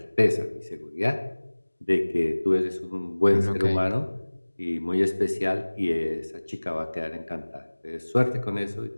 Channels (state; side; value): inverted; both; correlation -1.00